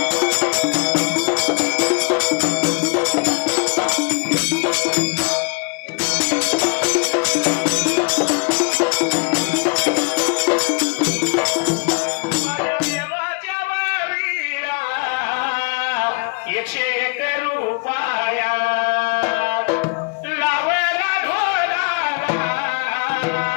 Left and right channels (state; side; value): quieter; right; 33.8 dB